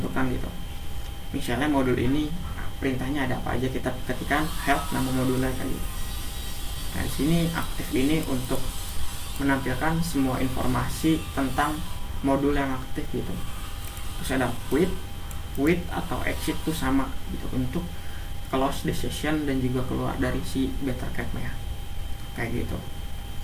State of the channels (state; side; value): identical; both; correlation 1.00